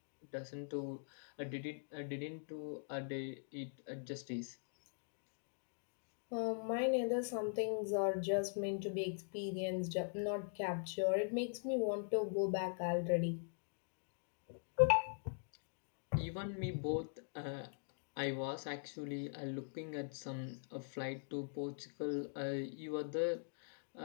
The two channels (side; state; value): right; silent; digital silence